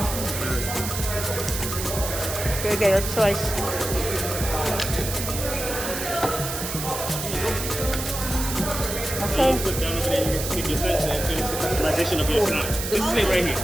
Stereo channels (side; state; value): right; noise; hiss, 5 dB below the sound